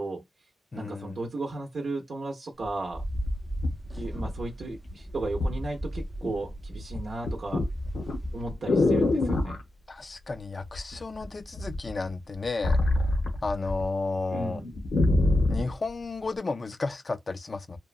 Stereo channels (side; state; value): both; normal; correlation 0.90